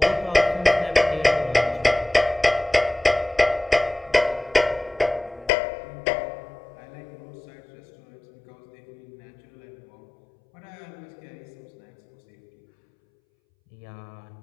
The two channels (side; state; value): right; drops out; at 5.5 s